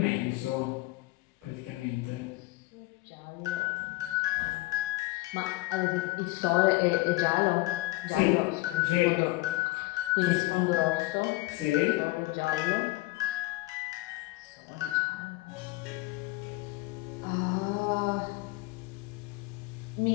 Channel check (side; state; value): right; quieter; 20.8 dB